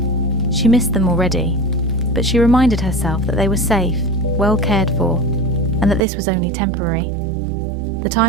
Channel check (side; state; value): left; drops out; at 6.0 s